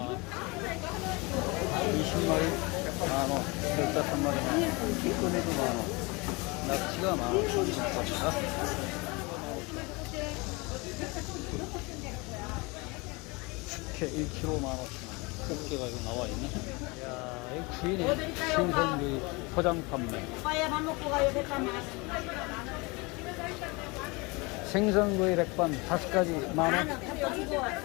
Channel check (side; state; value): right; quieter; 26.6 dB